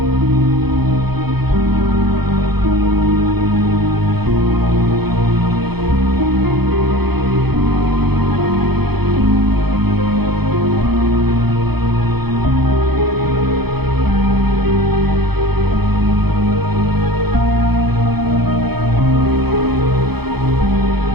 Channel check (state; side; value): late; left; 0.97 ms